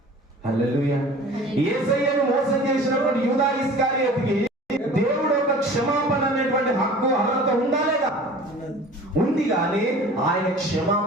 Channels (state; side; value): normal; both; correlation 0.43